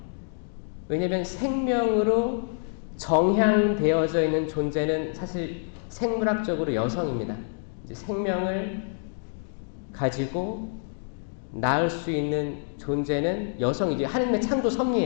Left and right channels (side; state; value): right; silent; digital silence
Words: 왜냐하면 생명으로 정향되어져 있는 존재는 사실 생물학적으로 여성입니다. 이제 생명을 가지고 낳을 수 있는 존재는 여성이지. 하나님의 창조